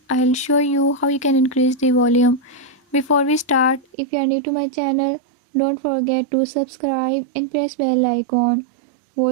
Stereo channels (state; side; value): drops out; left; at 3.9 s